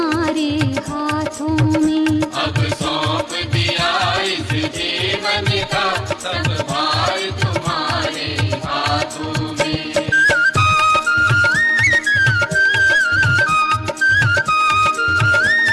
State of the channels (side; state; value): both; identical; correlation 1.00